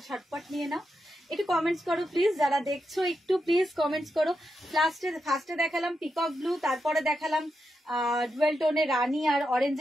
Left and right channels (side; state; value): both; normal; correlation 0.86